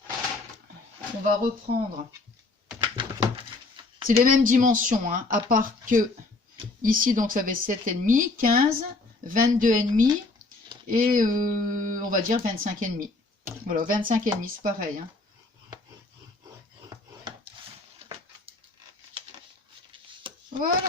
on va reprendre... C'est les mêmes dimensions, hein, à part que ici, donc, ça fait 7,5, 15, 22,5 et on va dire 25,5. Voilà, 25,5, c'est pareil. Hein. Voilà.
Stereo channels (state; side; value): quieter; right; 3.4 dB